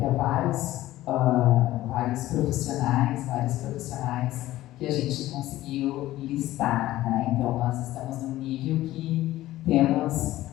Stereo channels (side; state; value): right; quieter; 15.5 dB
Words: há vários profissionais que a gente conseguiu listar, né? Então nós estamos num nível que temos